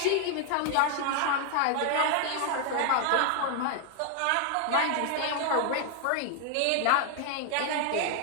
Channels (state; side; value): different; both; correlation 0.00